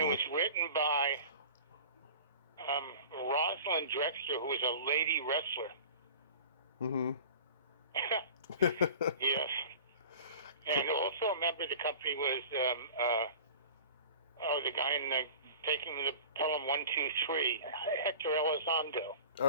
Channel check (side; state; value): both; inverted; correlation -0.40